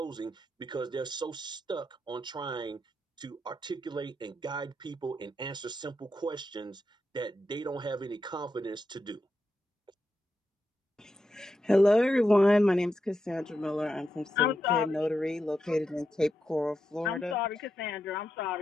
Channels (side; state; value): both; normal; correlation 0.85